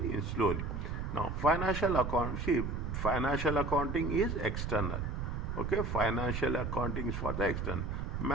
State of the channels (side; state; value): right; noise; rumble, 3 dB below the sound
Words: slowly. Now financial accounting is external. Okay, financial accounting is for the external.